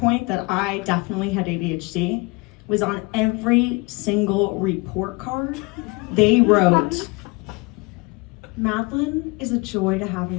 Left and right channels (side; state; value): right; quieter; 27.0 dB